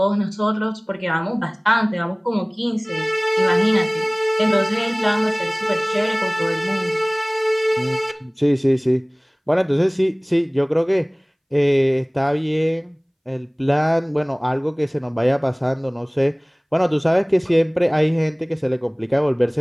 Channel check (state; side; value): identical; both; correlation 1.00